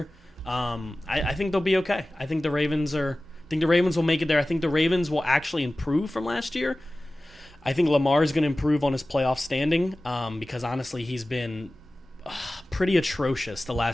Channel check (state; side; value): normal; both; correlation 0.97